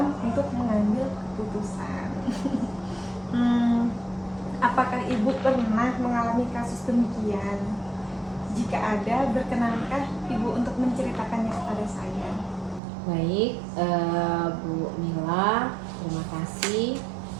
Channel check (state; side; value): drops out; left; at 12.8 s